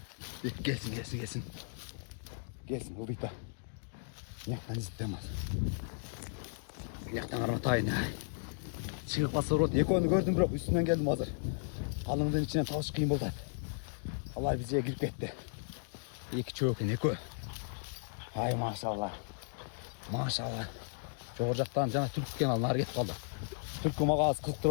Gelsin. Gelsin ıldıydı. Nyaktan izletemez. Nyaktan karmatayın ay. Çıkıp basa rot. Ekonu gördüm bırak üstünden geldim hazır. Kalınlığın içinden tavuş kıyım oldu. Allah bize girip gitti. İki çöğün eko. Hay maşallah. Çoğurcaktan cana Türk kenarına gitip kaldı. Türk'ü mağa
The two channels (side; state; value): right; silent; digital silence